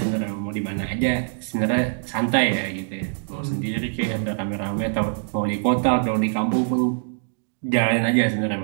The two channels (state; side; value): silent; left; digital silence